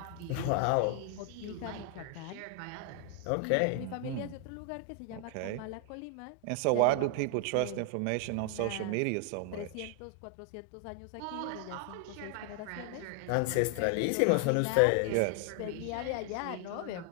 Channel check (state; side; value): different; both; correlation 0.00